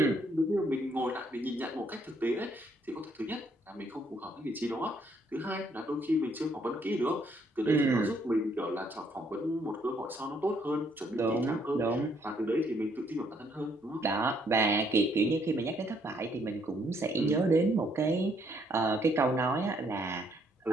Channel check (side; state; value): both; normal; correlation 0.69